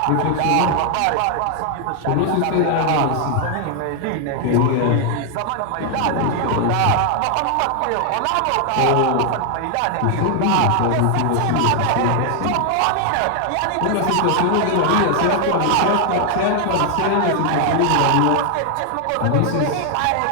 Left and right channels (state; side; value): different; both; correlation 0.00